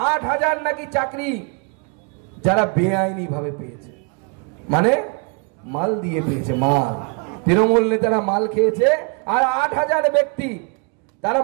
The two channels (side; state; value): left; quieter; 34.1 dB